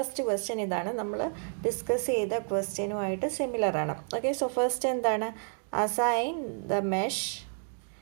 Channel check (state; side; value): silent; left; 58 dB below the other